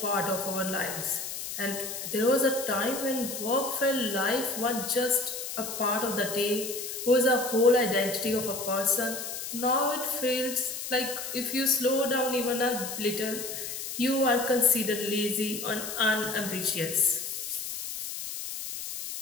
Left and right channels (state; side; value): noise; left; hiss, 6 dB below the sound